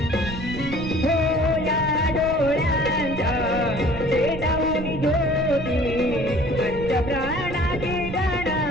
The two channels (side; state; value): right; noise; rumble, 9 dB below the sound